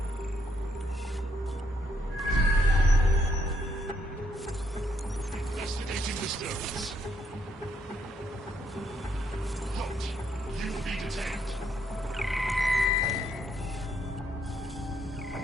Investigating disturbance. Halt. You will be detained.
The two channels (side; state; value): both; normal; correlation 0.74